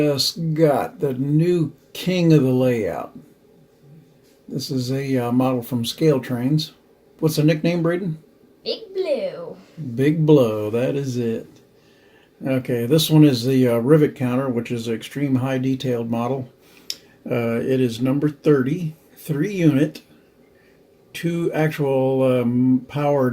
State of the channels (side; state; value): both; identical; correlation 1.00